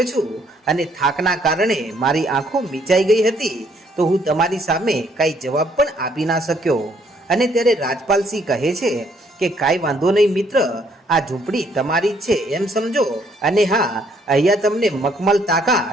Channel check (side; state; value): both; normal; correlation 0.67